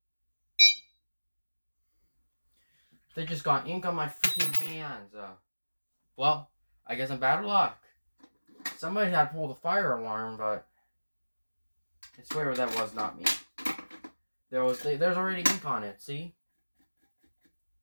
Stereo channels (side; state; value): both; inverted; correlation -1.00